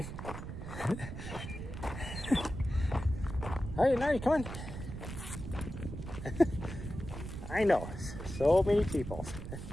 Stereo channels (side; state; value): right; noise; rumble, 8 dB below the sound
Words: Alright, Nahri, come on. I know, so many people.